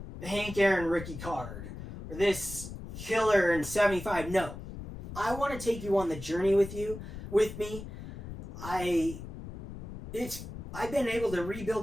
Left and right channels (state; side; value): noise; left; rumble, 10 dB below the sound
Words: Hank Aaron rookie card or this killer in 75. No, I want to take you on the journey with me. I've been able to rebuild